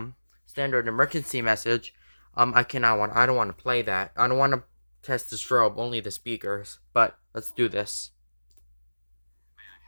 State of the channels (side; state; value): both; inverted; correlation -1.00